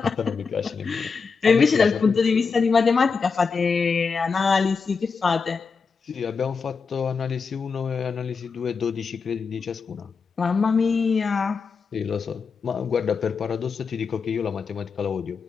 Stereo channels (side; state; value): right; quieter; 5.2 dB